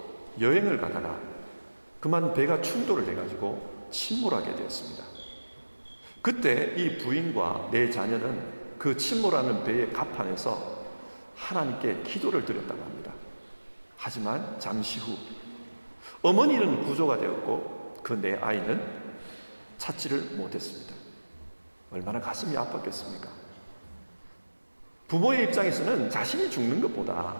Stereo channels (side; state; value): both; inverted; correlation -1.00